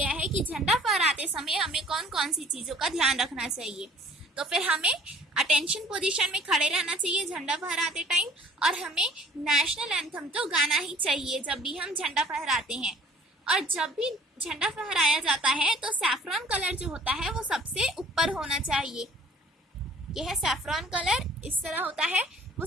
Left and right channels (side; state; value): both; normal; correlation 0.53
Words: है कि झंडा फहराते समय हमें कौन कौन सी चीज़ों का ध्यान रखना चाहिए. तो फिर हमें अटेंशन पोजीशन में खड़े रहना चाहिए झंडा फहराते टाइम, और हमें नेशनल एंथम तो गाना ही चाहिए जब भी हम झंडा फहराते हैं. और जब भी झंडा फहराया जाता है तो सैफरॉन कलर जो होता है वो सबसे ऊपर ऊपर होना चाहिए। यह है सैफरॉन कलर, इस तरह होता है, वो